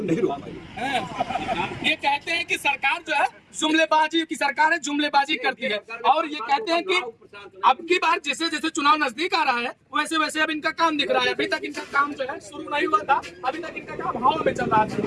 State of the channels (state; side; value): identical; both; correlation 1.00